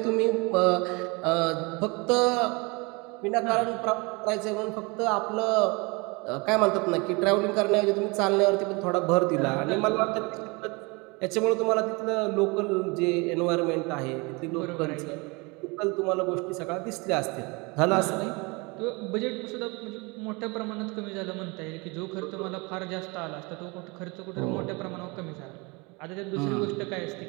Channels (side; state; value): left; quieter; 27.6 dB